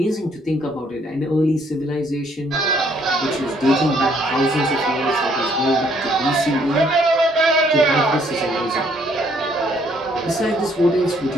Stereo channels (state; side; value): normal; both; correlation 0.66